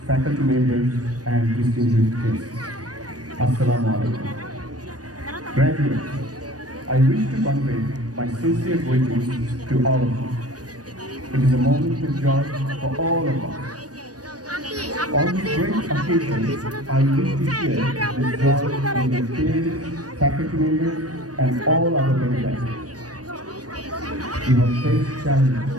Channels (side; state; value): left; late; 0.68 ms